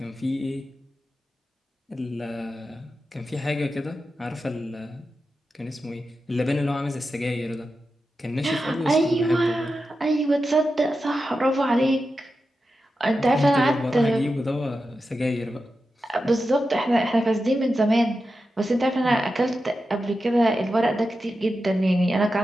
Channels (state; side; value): normal; both; correlation 0.90